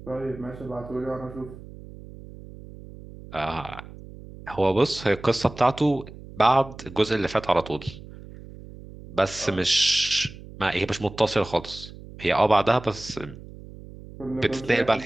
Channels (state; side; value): noise; right; hum, 16 dB below the sound